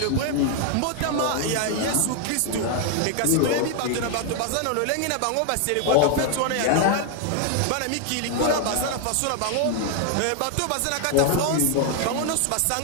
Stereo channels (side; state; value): both; different; correlation 0.00